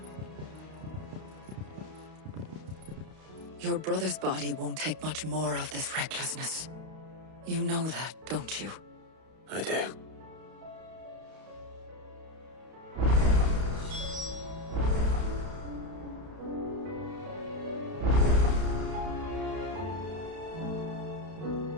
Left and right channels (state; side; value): late; left; 31 ms